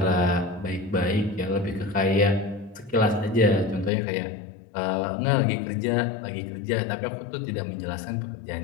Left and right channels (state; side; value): drops out; right; at 3.9 s